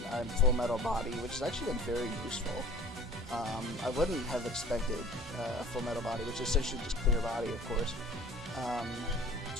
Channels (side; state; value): both; normal; correlation 0.46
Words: Full Metal Body, which has actually been very useful. I wouldn't have expected a Full Metal Body, which is essentially just clear body, of course,